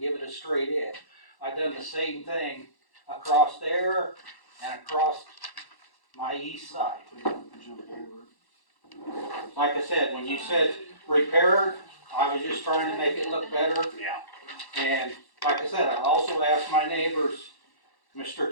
give it a straight edge. I done the same thing across there and across my east side. Like I said, when you said repair, I was just trying to make it look better. Yeah, And like I said, I also asked my neighbors, Mr.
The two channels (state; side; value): late; right; 1.1 ms